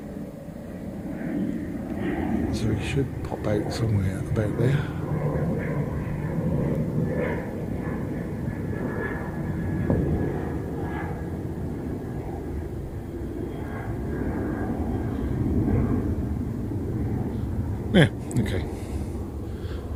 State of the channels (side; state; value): both; identical; correlation 1.00